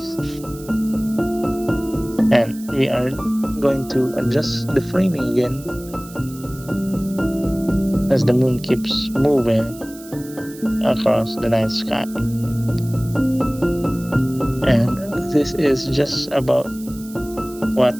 And we are going to adjust the framing again as the moon keeps moving across the night sky. And this is just about what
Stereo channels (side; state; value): right; noise; hiss, 19 dB below the sound